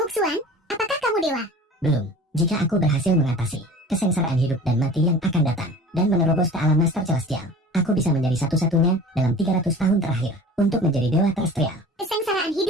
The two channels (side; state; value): both; normal; correlation 0.41